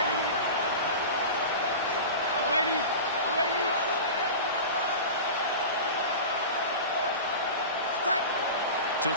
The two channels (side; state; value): both; inverted; correlation -0.30